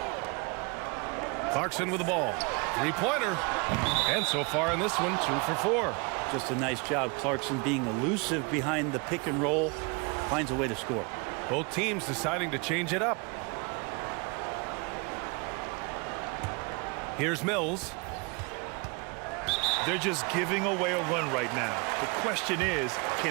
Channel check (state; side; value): quieter; left; 30.4 dB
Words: Clarkson with the ball. Three-pointer. And so far in this one, 2 for 4. Just a nice job. Clarkson being elusive behind the pick and roll. Finds a way to score. Both teams deciding to change it up. Here's Mills. They're just giving away a run right now. The question is,